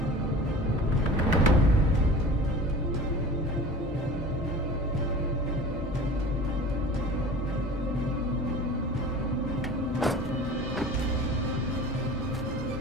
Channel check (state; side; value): normal; both; correlation 0.40